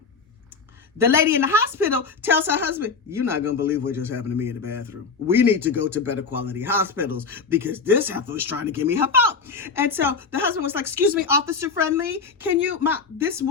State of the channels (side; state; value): right; quieter; 5.0 dB